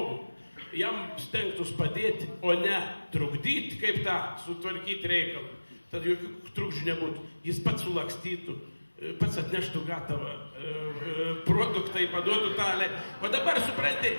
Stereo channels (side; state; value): both; inverted; correlation -1.00